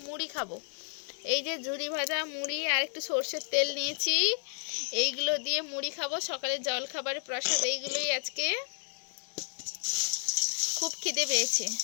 মুড়ি খাবো। এই যে ঝুরি ভাজা মুড়ি আর একটু সর্ষের তেল নিয়েছি, এইগুলো দিয়ে মুড়ি খাবো। সকালে জল খাবারের প্রসাদ এইগুলোই। আজকে খুব খিদে পেয়েছে।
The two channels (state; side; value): silent; right; 57 dB below the other